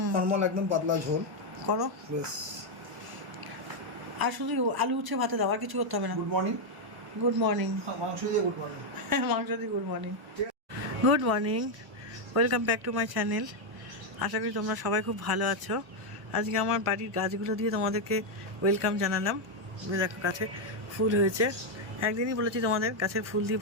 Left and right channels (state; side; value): late; left; 1.1 ms